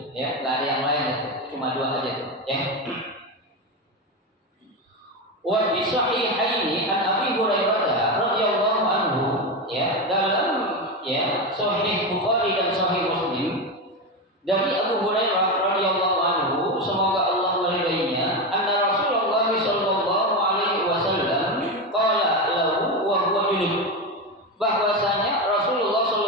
Ya, nggak ada yang lain itu, cuma dua aja tuh. Ya. Wa bi sahihaini an Abi Hurairah radhiyallahu anhu, ya, dalam, ya, Sahih Bukhari dan Sahih Muslim dari Abu Hurairah radhiyallahu anhu, semoga Allah meridainya, anna Rasulullah sallallahu alaihi wasallam qala lahu wa huwa junub, bahwasanya Rasulullah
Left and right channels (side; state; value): both; normal; correlation 0.15